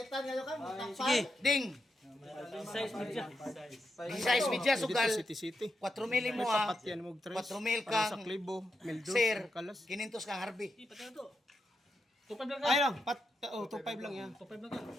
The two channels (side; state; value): both; normal; correlation 0.85